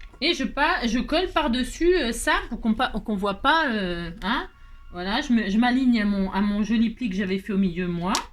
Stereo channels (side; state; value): both; identical; correlation 1.00